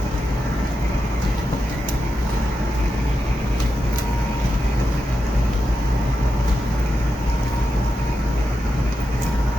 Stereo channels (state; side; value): normal; both; correlation 0.88